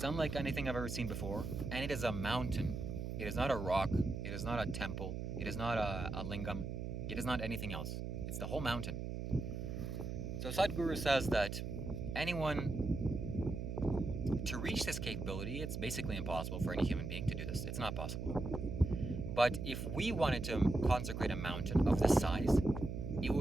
unlike anything I've ever seen before, and it is a mountain. It is not a rock, it is not a temple, it is not a lingam, it is not anything else. It's the whole mountain. So Sadhguru says that anyone, to reach this capability, it's basically impossible for any human being to do this. It's not possible. But if we wanted to consecrate a mountain of this size, it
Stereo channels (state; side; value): noise; right; hum, 4 dB below the sound